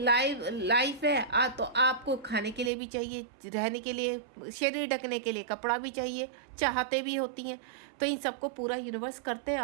है तो आपको खाने के लिए भी चाहिए, रहने के लिए, शरीर ढकने के लिए कपड़ा भी चाहिए, चाहते भी होती हैं। तो इन सबको पूरा यूनिवर्स करते हैं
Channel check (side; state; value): left; drops out; at 2.7 s